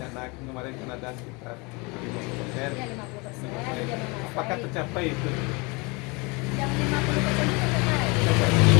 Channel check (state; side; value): quieter; right; 28.1 dB